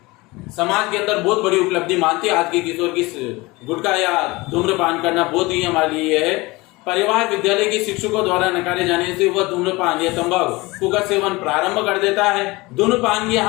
समाज के अंदर बहुत बड़ी उपलब्धि मानती है। आज के किशोर की गुटखा या धूम्रपान करना बहुत ही हमारे लिए है। परिवार, विद्यालय के शिक्षकों द्वारा नकारे जाने से वह धूम्रपान या तंबाकू का सेवन प्रारंभ कर देता है। धूम्रपान की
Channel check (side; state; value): right; quieter; 22.6 dB